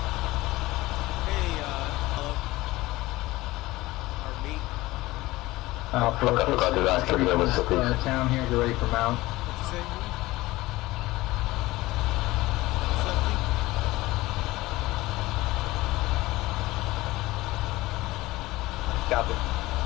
Town here, get ready for mount. Copy.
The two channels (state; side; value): quieter; right; 18.9 dB